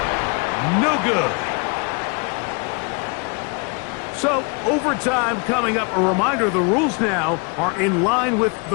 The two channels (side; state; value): right; quieter; 33.2 dB